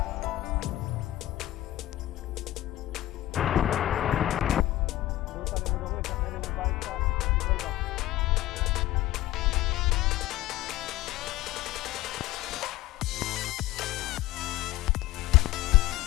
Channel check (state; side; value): quieter; right; 15.8 dB